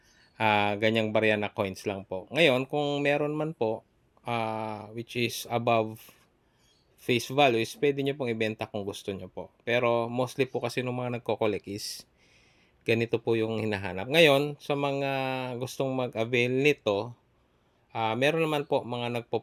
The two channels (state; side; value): identical; both; correlation 1.00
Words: ganyang barya na coins lang po. Ngayon, kung meron man po, which is above face value, is pwede nyo pong ibenta kung gusto nyo po. Pero mostly po kasi ng mga nagko-collect is ganito po yung hinahanap. Ngayon, sa mga gustong mag-avail nito, meron naman po mga